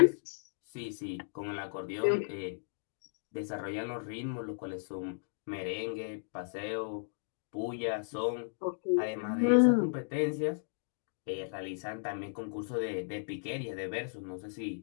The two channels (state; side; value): silent; right; digital silence